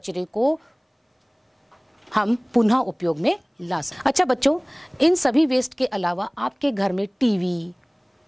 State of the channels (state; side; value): identical; both; correlation 1.00